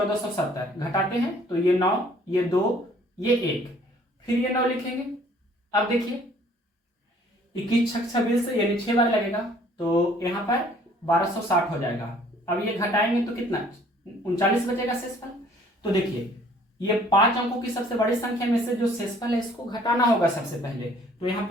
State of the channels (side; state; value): both; normal; correlation 0.57